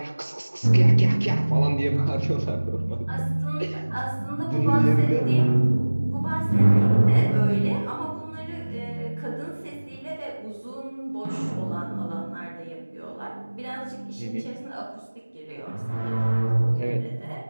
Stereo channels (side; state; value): both; inverted; correlation -1.00